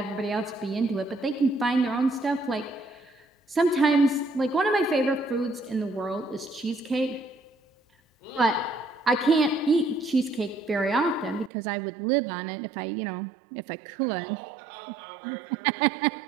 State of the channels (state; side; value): drops out; left; at 11.5 s